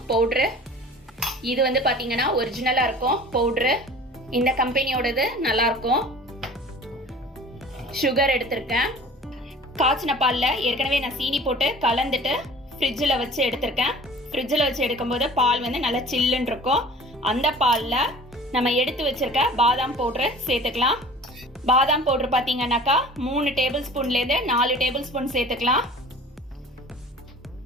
பவுடரு. இது பாத்தீங்கன்னா ஒரிஜினலா இருக்கும் பவுடரு. இந்த கம்பெனியோடது நல்லா இருக்கும். சுகர் எடுத்திருக்கேன். காய்ச்சின பாலில் ஏற்கனவே நான் சீனி போட்டு கலந்துட்டு ஃப்ரிட்ஜில் வச்சு எடுத்திருக்கேன். ஃப்ரிட்ஜில் வச்சு எடுக்கும்போது பால் நல்லா சில்லுன்னு இருக்கும். அந்த பாலில் நம்ம எடுத்து வச்சிருக்க பாதாம் பவுடரை சேர்த்துக்கலாம். பாதாம் பவுடர் பார்த்தீங்கன்னாக்கா 3 டேபிள் ஸ்பூன்லேருந்து 4 டேபிள் ஸ்பூன் சேர்த்துக்கலாம்.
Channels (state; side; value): normal; both; correlation 0.43